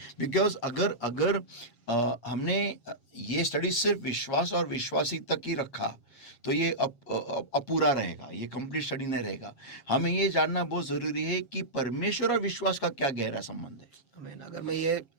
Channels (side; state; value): right; late; 7.4 ms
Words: बिकॉज अगर हमने ये स्टडी सिर्फ विश्वास और विश्वासी तक ही रखा तो ये अपूरा रहेगा, ये कंप्लीट स्टडी नहीं रहेगा. हमें ये जानना बहुत ज़रूरी है कि परमेश्वर और विश्वास का क्या गहरा संबंध है. आमीन. अगर मैं ये